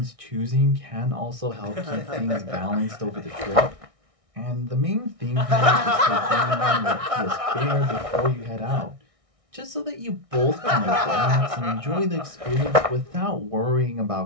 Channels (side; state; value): left; late; 1.6 ms